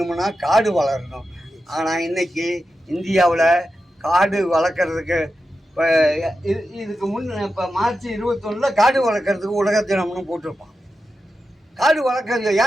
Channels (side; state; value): both; normal; correlation 0.90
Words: காடு வளரணும். ஆனால் இன்றைக்கி இந்தியாவில் காடு வளர்க்குறதுக்கு இப்போ இதுக்கு இப்போ மார்ச் 21 காடு வளர்க்குறதுக்கு உலக தினம்னு போட்டிருப்பான். காடு வளர்க்குறது